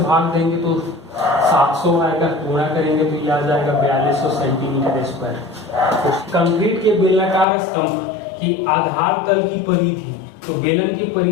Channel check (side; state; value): right; drops out; at 7.5 s